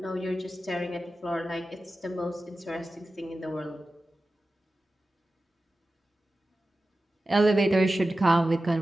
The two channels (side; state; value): both; normal; correlation 0.94